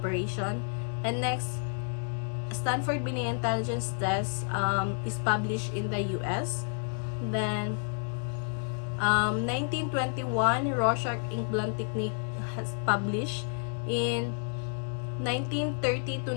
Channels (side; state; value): right; silent; 58 dB below the other